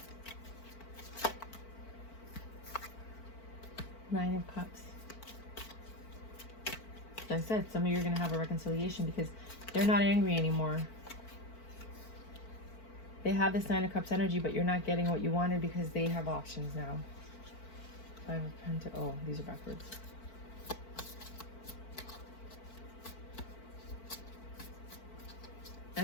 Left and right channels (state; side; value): late; right; 4.5 ms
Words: Nine of Cups. Like I said, some of you are going to have a reconciliation because they're not angry anymore. They have this Nine of Cups energy, but you're not getting what you wanted because they have options now. Five of Pentacles. Oh, these are backwards.